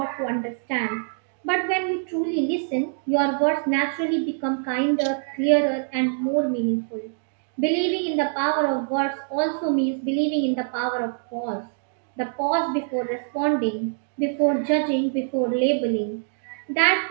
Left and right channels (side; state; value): left; silent; digital silence